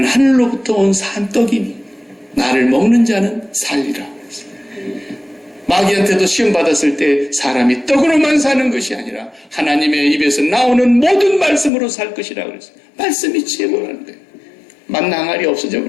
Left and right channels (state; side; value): drops out; right; at 11.7 s